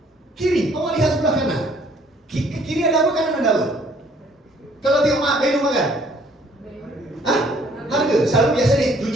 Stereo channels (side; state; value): both; normal; correlation 0.61